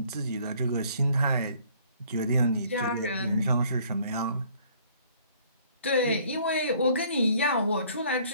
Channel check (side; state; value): both; inverted; correlation -0.58